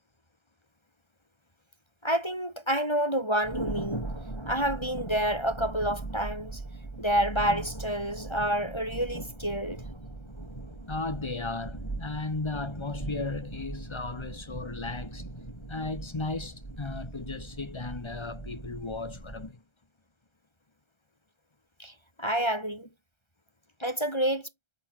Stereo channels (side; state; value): right; late; 1.3 ms